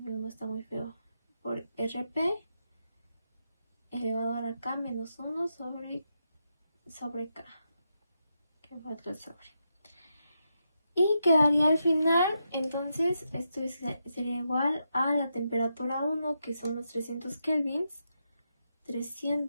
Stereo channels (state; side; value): inverted; both; correlation -0.84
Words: no está muy feo, por RP elevado a la K menos 1 sobre K, que fue otro sobre. Y quedaría al final, entonces esto sería igual a la temperatura 1, que son los 300 kelvins,